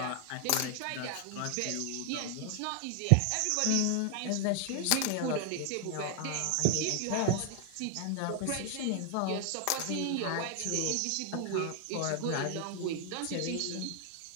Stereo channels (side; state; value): both; different; correlation 0.00